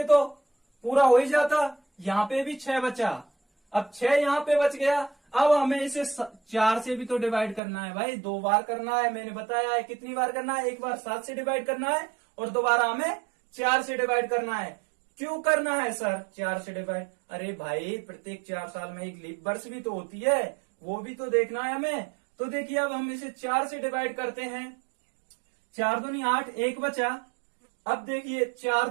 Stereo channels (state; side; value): drops out; left; at 7.6 s